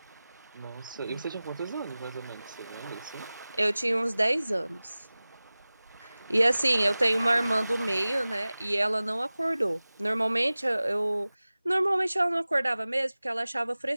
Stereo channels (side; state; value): both; inverted; correlation -0.98